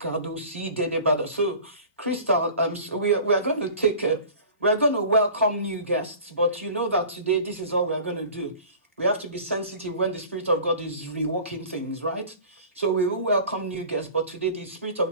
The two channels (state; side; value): inverted; both; correlation -0.42